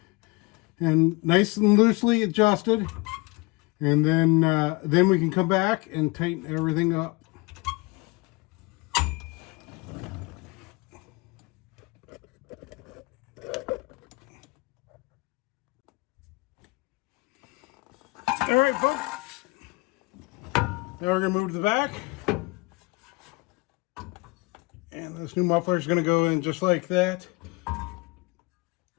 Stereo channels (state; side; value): quieter; right; 26.0 dB